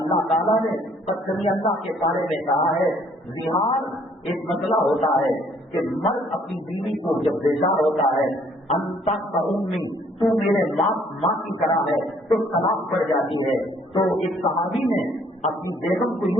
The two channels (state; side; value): normal; both; correlation 0.63